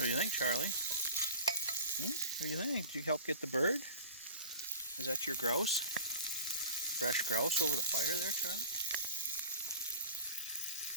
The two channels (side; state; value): both; inverted; correlation -0.38